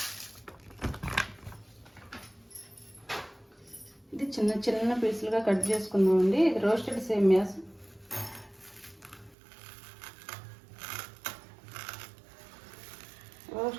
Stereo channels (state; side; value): drops out; left; at 9.3 s